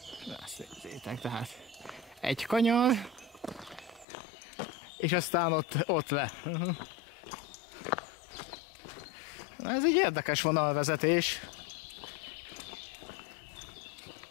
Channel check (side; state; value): right; drops out; at 4.0 s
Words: Ezt nézzétek, tehát egy kanyar, és aztán ott le. Na, ez egy érdekes vonalvezetés.